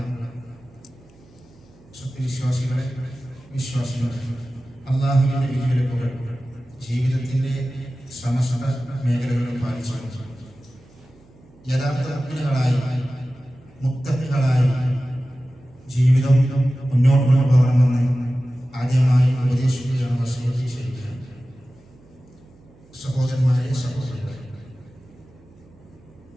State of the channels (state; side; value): noise; right; hum, 27 dB below the sound